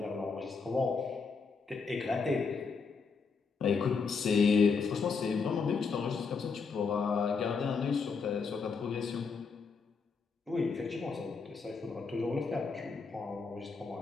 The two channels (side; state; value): right; quieter; 5.1 dB